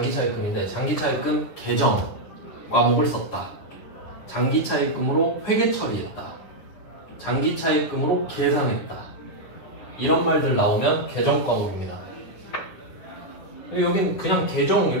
차입금인데 장기 차입금 계정 과목을 썼다. 장기 차입금으로 회계 처리했다. 장기 차입금으로 계상했다. 이런 말들 나오면 계정 과목입니다. 여긴 그냥 계정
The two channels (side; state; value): right; late; 10 ms